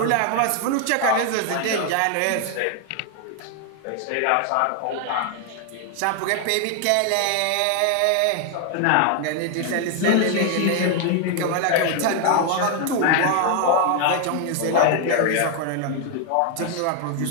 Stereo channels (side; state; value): both; different; correlation 0.00